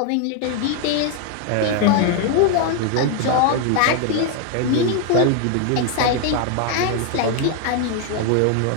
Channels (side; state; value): both; different; correlation 0.01